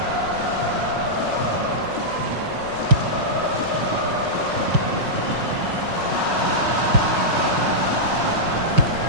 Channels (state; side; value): late; left; 5.5 ms